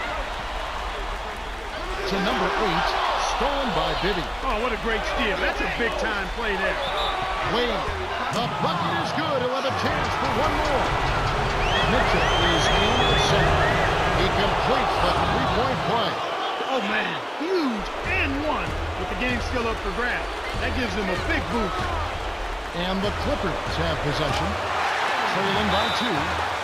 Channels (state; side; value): identical; both; correlation 1.00